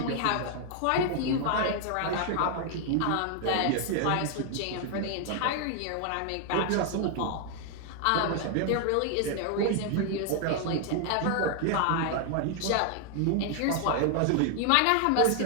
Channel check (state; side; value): different; both; correlation 0.00